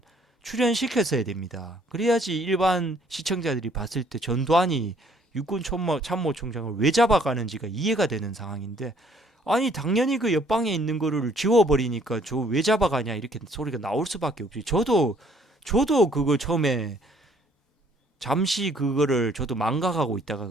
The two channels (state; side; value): normal; both; correlation 0.62